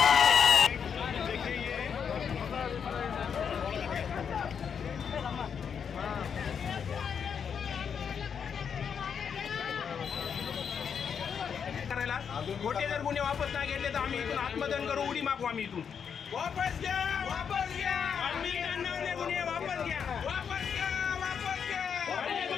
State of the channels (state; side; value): quieter; right; 7.1 dB